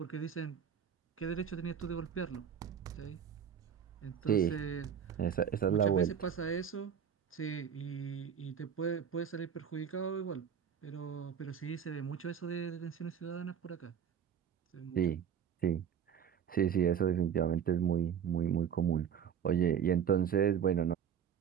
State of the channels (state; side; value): quieter; left; 8.2 dB